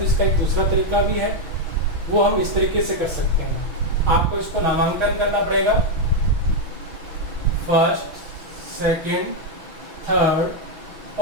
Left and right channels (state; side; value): late; left; 6.1 ms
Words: इसका एक दूसरा तरीका भी है, वो हम इस तरीके से कर सकते हैं। आपको इसको नामांकन करना पड़ेगा, फर्स्ट, सेकंड, थर्ड